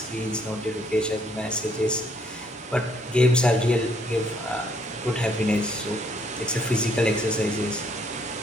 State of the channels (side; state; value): both; normal; correlation 0.67